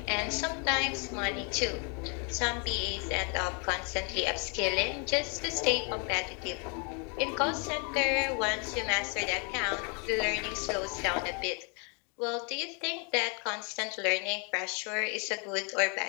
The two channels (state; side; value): quieter; right; 35.7 dB